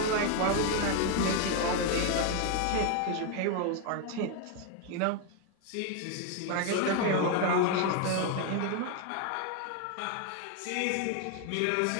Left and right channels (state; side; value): different; both; correlation 0.01